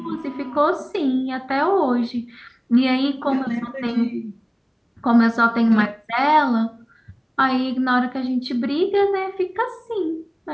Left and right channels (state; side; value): identical; both; correlation 1.00